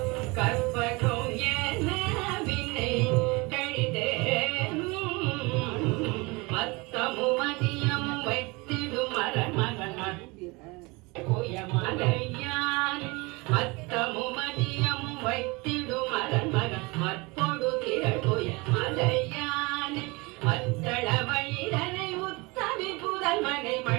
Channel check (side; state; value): left; quieter; 25.6 dB